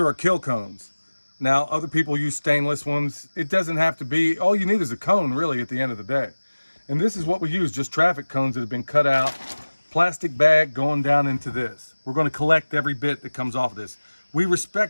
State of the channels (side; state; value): both; inverted; correlation -1.00